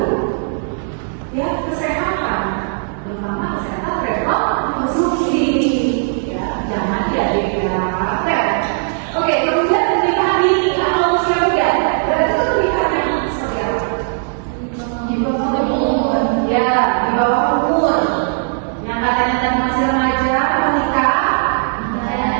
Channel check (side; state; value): left; silent; digital silence